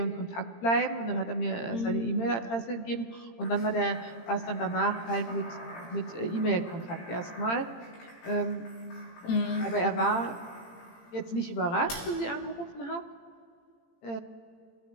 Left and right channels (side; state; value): right; late; 18 ms